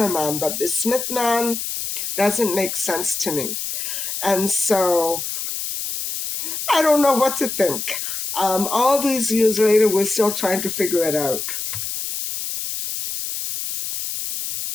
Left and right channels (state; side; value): noise; left; hiss, 4 dB below the sound